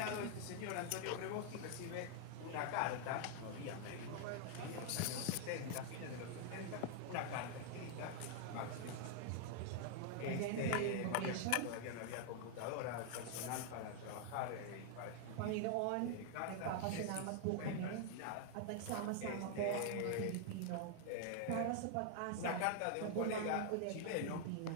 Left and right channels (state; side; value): different; both; correlation 0.00